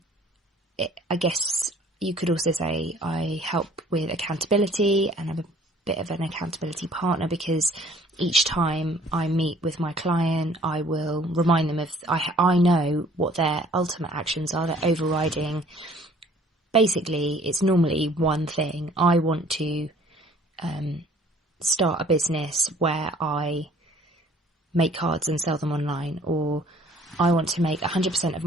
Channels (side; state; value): both; normal; correlation 0.55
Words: guess you could also say I help with accountability, and I'm a bit of an accountability partner, because each time I meet with my client, I will remind them of, I know what their ultimate actions are, their overriding. Basically, it's normally one thing. I want to start a business where I make cards and sell them online, or I want to make 100% of